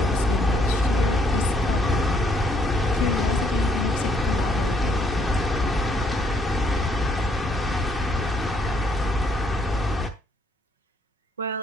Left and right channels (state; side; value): normal; both; correlation 0.69